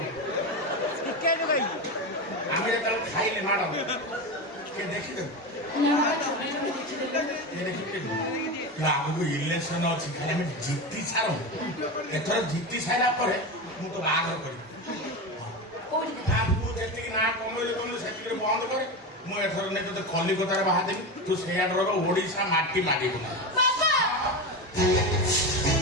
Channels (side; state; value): both; normal; correlation 0.20